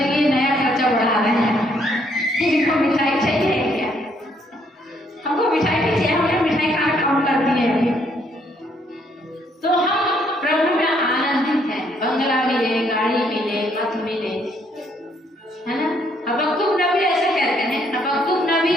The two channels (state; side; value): normal; both; correlation 0.69